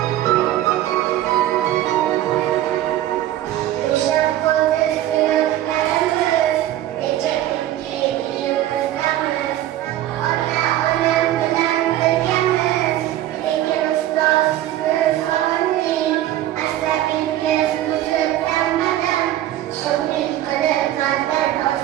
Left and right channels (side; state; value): left; quieter; 13.4 dB